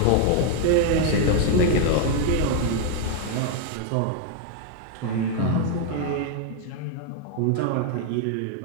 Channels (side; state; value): both; different; correlation 0.00